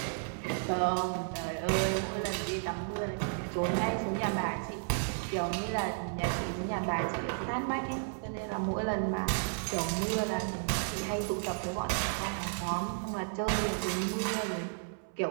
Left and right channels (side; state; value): left; silent; 56 dB below the other